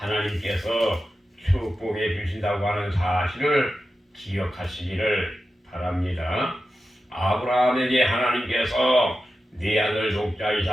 축복해 주신다고 하는 사실을 기억하시기를 바랍니다. 아브라함에게 하나님께서 네 아들 독자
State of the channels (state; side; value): normal; both; correlation 0.92